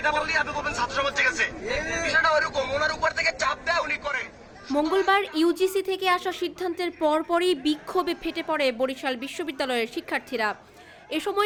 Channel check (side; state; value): both; identical; correlation 1.00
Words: বললেই আপনি বলবেন ছাত্র সমাজ গেছে। বিষয়টা ওরকম, ওনার উপর থেকে চাপ দেয় উনি করে। মঙ্গলবার ইউজিসি থেকে আসা সিদ্ধান্তের পরপরই বিক্ষোভে ফেটে পড়ে বরিশাল বিশ্ববিদ্যালয়ের শিক্ষার্থীরা। এ